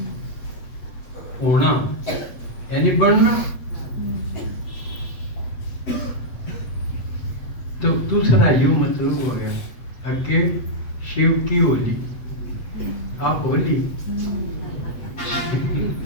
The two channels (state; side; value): late; right; 8.2 ms